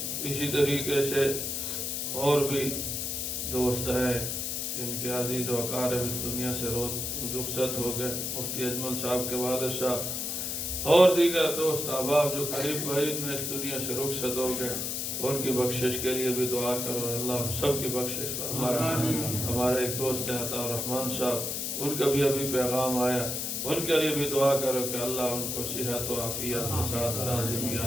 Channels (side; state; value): left; noise; hiss, 2 dB below the sound